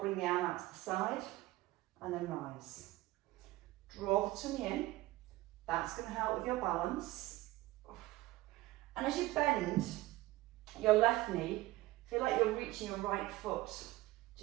the arm out to the side and then rise. Draw the tummy in. That's going to help with your balance. And as you bend your left knee, feel like you're reaching your right foot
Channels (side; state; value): left; quieter; 18.2 dB